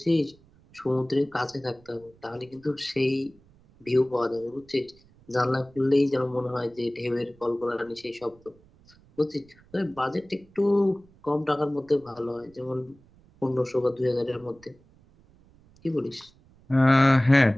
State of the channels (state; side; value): noise; right; rumble, 28 dB below the sound